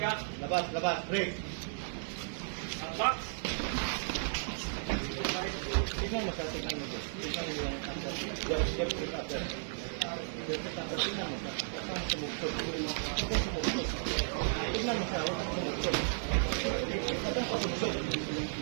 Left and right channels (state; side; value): silent; left; digital silence